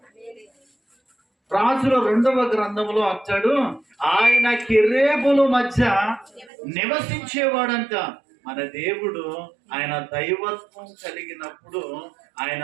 రాజుల 2వ గ్రంథంలో అంటాడు, ఆయన కెరూబుల మధ్య నివసించేవాడంట. మన దేవుడు ఆయన దైవత్వం కలిగినప్పుడు ఆయన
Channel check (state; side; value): drops out; left; at 6.5 s